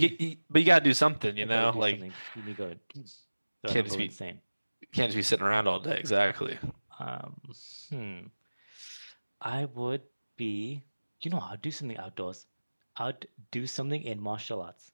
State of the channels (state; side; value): inverted; both; correlation -1.00